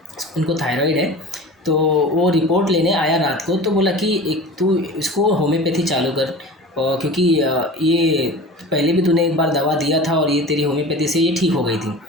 उनको थायराइड है। तो वो रिपोर्ट लेने आया रात को, तो बोला कि एक तू इसको होम्योपैथी चालू कर, और क्योंकि ये पहले भी तूने एक बार दवा दिया था और ये तेरी होम्योपैथी से ये ठीक हो गई थी।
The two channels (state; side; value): normal; both; correlation 0.36